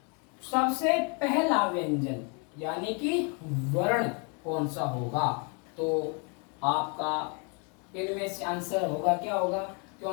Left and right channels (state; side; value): quieter; right; 35.6 dB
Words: सबसे पहला व्यंजन यानी कि वर्ण कौन सा होगा? तो आपका इनमें से आंसर होगा क्या होगा?